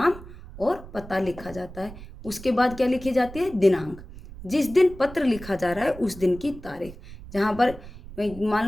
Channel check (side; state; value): right; noise; rumble, 16 dB below the sound